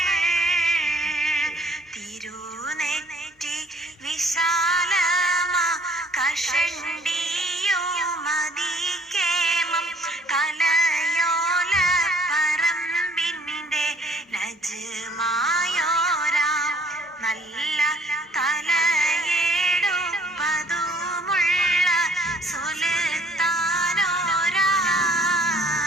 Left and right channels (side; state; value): both; normal; correlation 0.59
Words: തിരുനെറ്റി വിശാലമാ കഷണ്ടിയോ മതികേമം കലയോല പറമ്പിന്റെ നജ്മായോരാം നല്ല തലയെടുപ്പതുമുള്ള സുൽത്താനോരാ